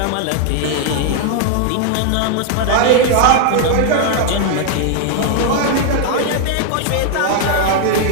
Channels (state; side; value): different; both; correlation 0.00